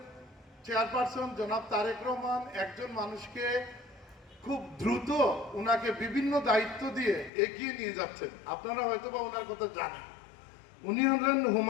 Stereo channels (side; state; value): right; drops out; at 7.3 s